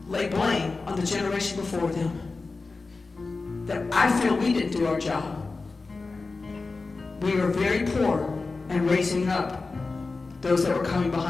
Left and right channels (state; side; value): quieter; right; 3.8 dB